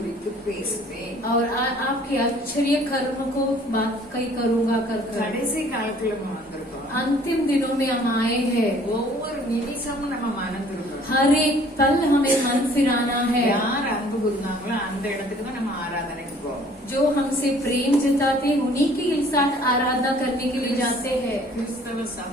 பேசுவேன் और आपके आश्चर्य कर्म को बात कई करूंगा कर கடைசி காலத்துல நம்ம வந்திருக்கோம்। अंतिम दिनों में हम आए हैं। ஒவ்வொரு நிமிஷமும் நம்ம மறந்துருக்கோம்। हर एक पल हमें मन फिराना है। யார் அன்பு கூர்ந்தாங்களோ அந்த இடத்துக்கு தான் நம்ம ஆராதனைக்கு போவோம்। जो हमसे प्रेम जताते उन्हीं के साथ आराधना करने के लिए जाते हैं। கிறிஸ்தவ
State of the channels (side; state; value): both; normal; correlation 0.55